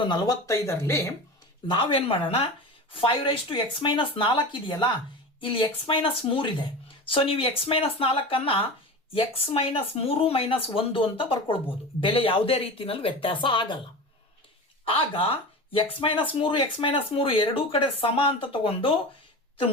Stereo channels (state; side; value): normal; both; correlation 0.30